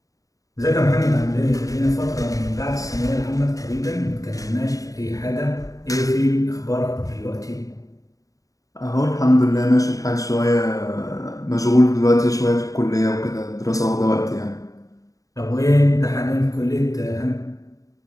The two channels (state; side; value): late; right; 0.16 ms